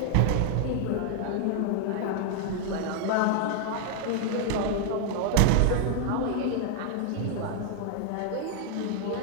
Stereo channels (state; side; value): different; both; correlation 0.00